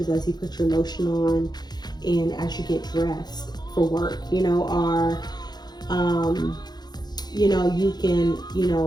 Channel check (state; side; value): late; right; 0.20 ms